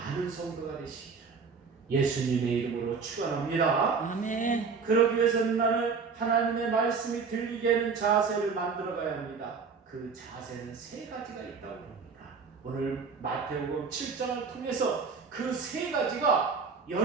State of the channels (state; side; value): quieter; left; 5.3 dB